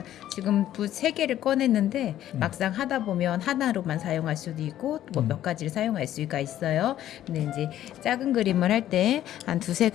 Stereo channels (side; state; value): right; quieter; 12.3 dB